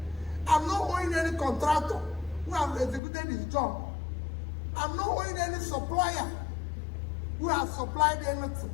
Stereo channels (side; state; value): right; drops out; at 3.0 s